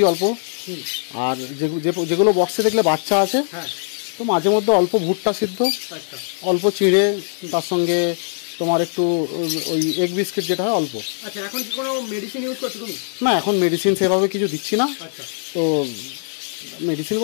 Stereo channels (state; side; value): silent; right; digital silence